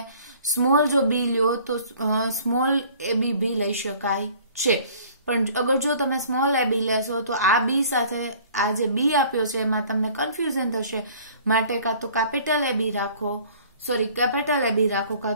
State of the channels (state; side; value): inverted; both; correlation -0.52